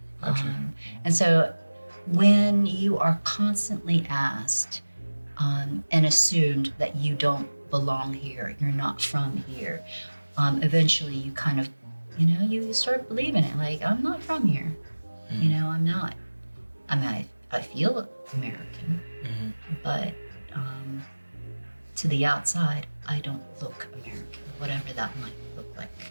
And so when you are constantly asked and assumed that you don't belong here, you're not from here, eventually you kind of, you know, you start believing it. Like, I'm not from here. You know, I'm not. I mean, I feel American, but to the outside, I don't look American, whatever that might look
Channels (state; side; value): inverted; both; correlation -1.00